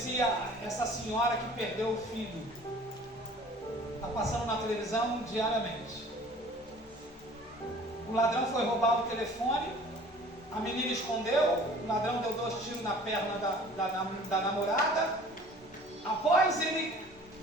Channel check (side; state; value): both; normal; correlation 0.48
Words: essa senhora que perdeu o filho. Está passando na televisão diariamente. O ladrão foi roubar o telefone, a menina escondeu, o ladrão deu 2 tiros na perna da namorada. Após ele